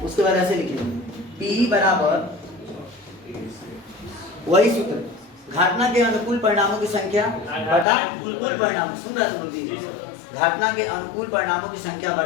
उसके बाद ऐसे लिखेंगे P बराबर वही सूत्र, घटना के अनुकूल परिणामों की संख्या बटा कुल परिणाम। सुन रहा तुम? घटना के अनुकूल परिणामों की संख्या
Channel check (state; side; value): drops out; right; at 7.9 s